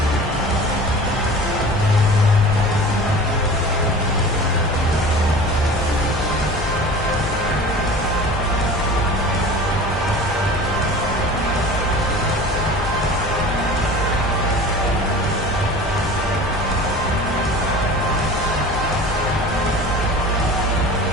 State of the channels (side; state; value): both; normal; correlation 0.39